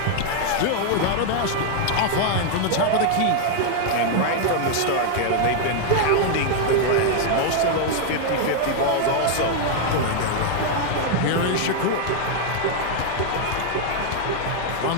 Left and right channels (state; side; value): different; both; correlation 0.00